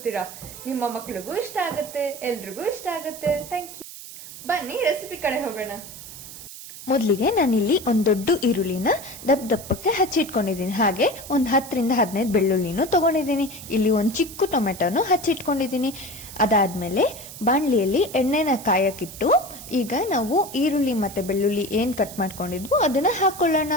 ನಿಮ್ಮ ಮಕ್ಳಿಗೂ ಇಷ್ಟ ಆಗುತ್ತೆ, ಎಲ್ರಿಗೂ ಇಷ್ಟ ಆಗುತ್ತೆ. Thank you. ಬನ್ನಿ ರೆಸಿಪಿ ಕಡೆ ಹೋಗೋಣ. ಮೊದಲಿಗೆ ನಾನಿಲ್ಲಿ ಒಂದ್ ದೊಡ್ಡ ಈರುಳ್ಳಿನ ದಪ್ಪಕ್ಕೆ ಹಚ್ಚಿಟ್ಕೊಂಡಿದ್ದೀನಿ. ಹಾಗೆ ಒಂದ್ 10ರಿಂದ 15 ಬೆಳ್ಳುಳ್ಳಿನೂ ತಗೊಂಡಿದ್ದೀನಿ. ಇಲ್ಲಿ ಒಂದ್ ಚಿಕ್ಕ ಟೊಮೆಟೊನು ಹಚ್ಚಿಟ್ಕೊಂಡಿದ್ದೀನಿ. ಅದಾದ್ಮೇಲೆ ಬಾಣ್ಲಿಯಲ್ಲಿ ಎಣ್ಣೆನ ಕಾಯಕ್ಕಿಟ್ಟು ಈಗ ನಾವು ಈರುಳ್ಳಿ ಮತ್ತೆ ಬೆಳ್ಳುಳ್ಳಿ ಏನ್ ಕಟ್ ಮಾಡ್ಕೊಂಡಿದ್ವು ಅದನ್ನ ಹಾಕೊಳ್ಳೋಣ.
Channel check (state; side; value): noise; right; hiss, 14 dB below the sound